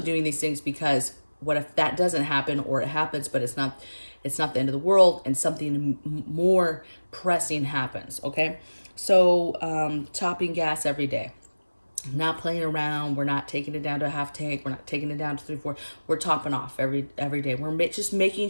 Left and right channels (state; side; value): inverted; both; correlation -1.00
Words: these things because what if that doesn't happen, or it happens, but it's not the end of the world and something more pressing happens, okay? So topping gas every day. Not playing around. We're not taking it down to a half tank. We're not taking it down to 3-4. We're topping off every day. We're just